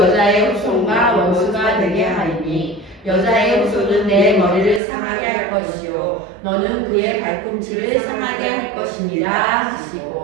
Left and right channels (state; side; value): drops out; left; at 4.8 s